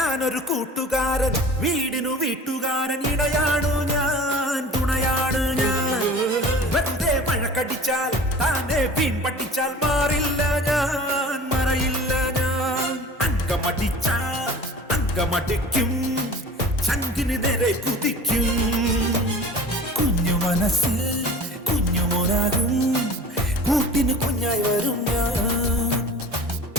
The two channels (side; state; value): both; normal; correlation 0.41